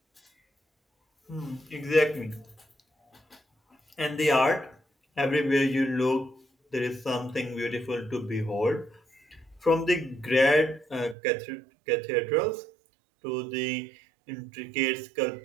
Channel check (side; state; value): left; drops out; at 11.2 s